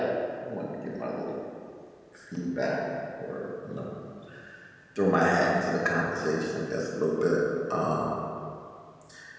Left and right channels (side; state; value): both; identical; correlation 1.00